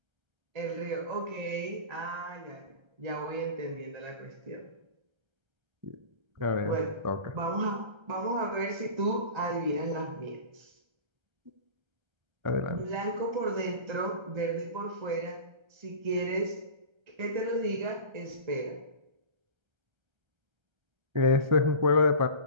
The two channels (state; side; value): late; left; 1.3 ms